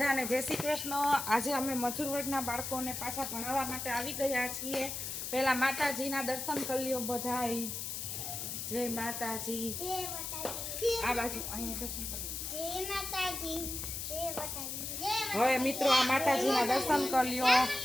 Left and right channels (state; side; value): noise; left; hiss, 5 dB below the sound